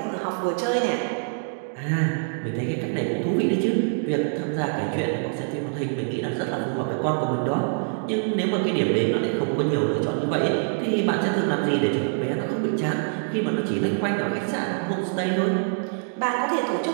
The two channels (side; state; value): left; silent; digital silence